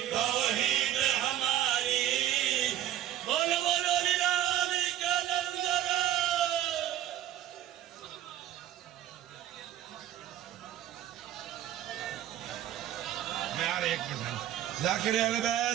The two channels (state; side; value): quieter; left; 12.0 dB